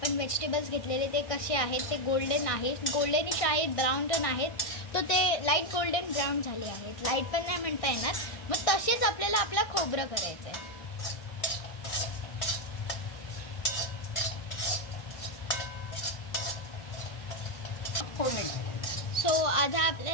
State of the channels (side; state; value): right; late; 1.6 ms